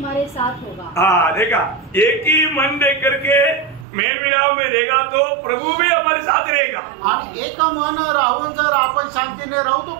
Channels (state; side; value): drops out; left; at 3.9 s